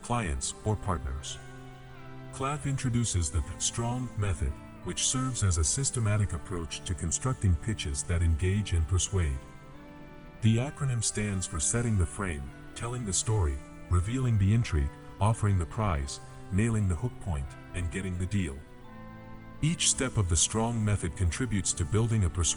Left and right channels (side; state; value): both; identical; correlation 1.00